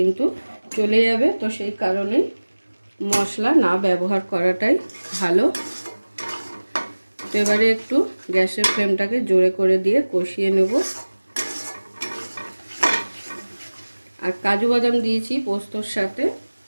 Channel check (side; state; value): both; inverted; correlation -1.00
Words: চলে যাবে, তো সেই কারণেই মশলা না ব্যবহার করাটাই ভালো। তো এবারে একটু গ্যাসের ফ্লেমটাকে জোরে করে দিয়ে কষিয়ে নেব। আর কাজু বাদাম দিয়েছি পোস্তর সাথে